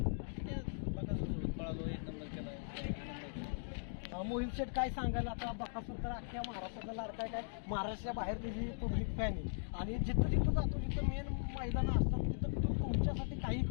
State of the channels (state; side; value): silent; right; digital silence